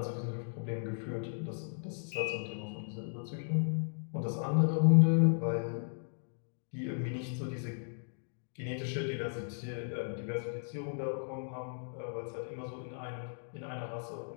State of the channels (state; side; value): silent; right; digital silence